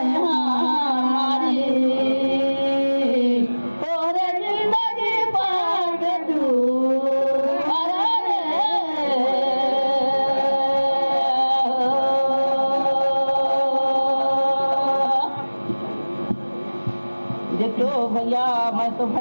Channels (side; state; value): both; inverted; correlation -1.00